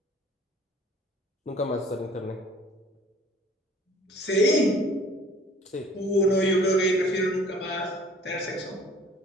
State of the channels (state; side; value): normal; both; correlation 0.52